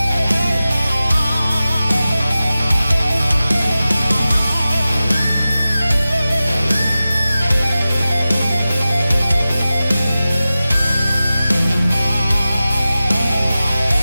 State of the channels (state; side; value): inverted; both; correlation -0.95